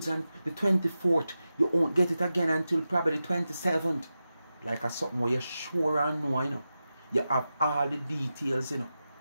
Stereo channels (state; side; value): inverted; both; correlation -0.92